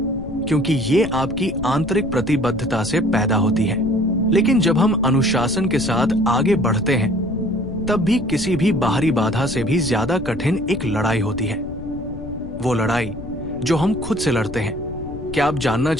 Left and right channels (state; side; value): noise; left; rumble, 12 dB below the sound